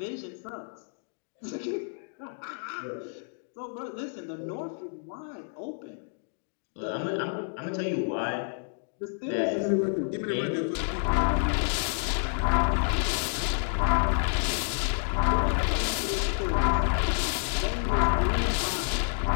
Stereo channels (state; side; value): silent; right; digital silence